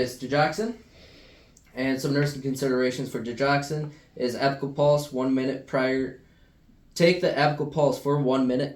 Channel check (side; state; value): both; identical; correlation 1.00